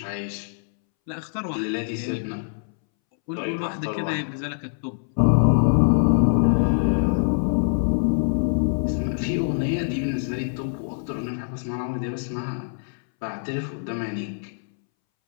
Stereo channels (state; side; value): silent; right; 62 dB below the other